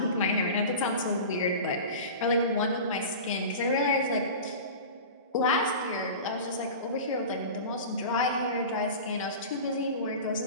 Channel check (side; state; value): both; inverted; correlation -0.33